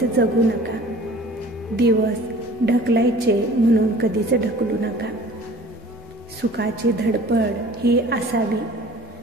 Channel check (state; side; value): normal; both; correlation 0.47